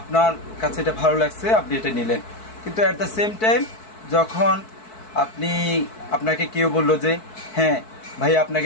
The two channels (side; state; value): right; late; 4.6 ms